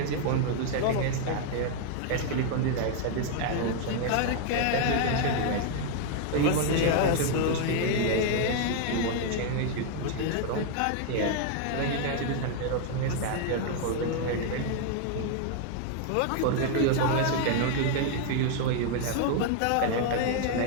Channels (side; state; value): both; different; correlation 0.00